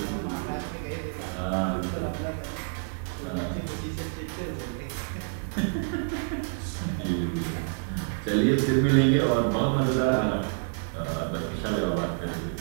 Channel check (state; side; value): silent; left; digital silence